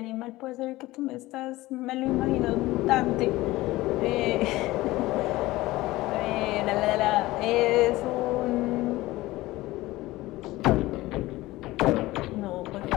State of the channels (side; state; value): right; quieter; 18.4 dB